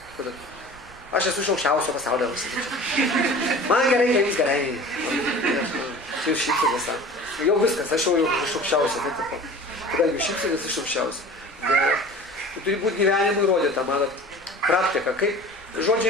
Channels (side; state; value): both; normal; correlation 0.41